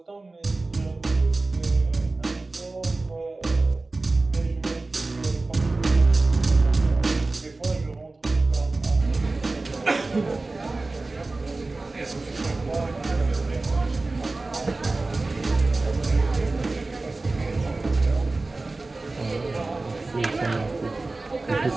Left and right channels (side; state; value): left; quieter; 3.3 dB